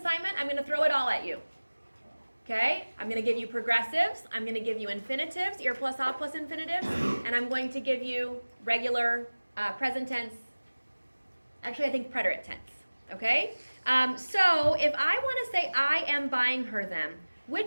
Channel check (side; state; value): both; inverted; correlation -1.00